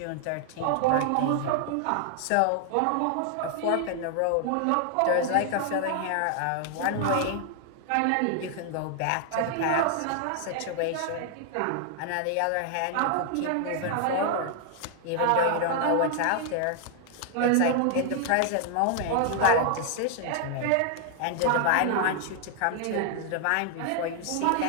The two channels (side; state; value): both; different; correlation 0.00